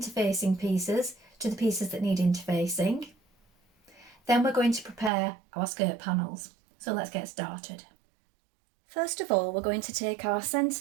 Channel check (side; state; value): left; drops out; at 5.1 s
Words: pieces to the pieces that need interfacing. Then we're going to prepare our skirt panels. So let's get started. First of all, we're going to take our